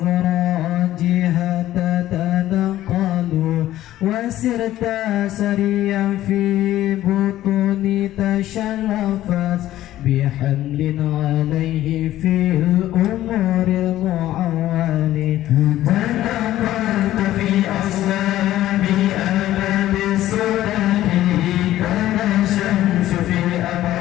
تتنقل وسرت سريا في بطون تشرفت بحمل عليه في الأمور المعول تنقلت في أصلاب أبد السودان كان الشمس في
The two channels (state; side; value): quieter; right; 13.9 dB